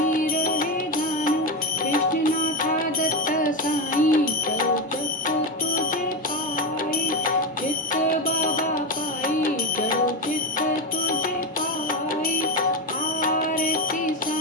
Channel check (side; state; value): both; normal; correlation 0.14